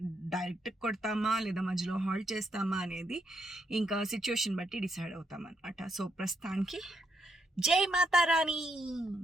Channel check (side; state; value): both; normal; correlation 0.77